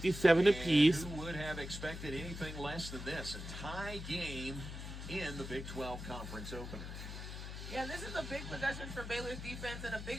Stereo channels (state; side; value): noise; left; hum, 8 dB below the sound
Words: apiece. Who would have expected anything less than this? A tie game in the Big 12 Conference opener. Yeah, this is a big possession for Baylor's defense and a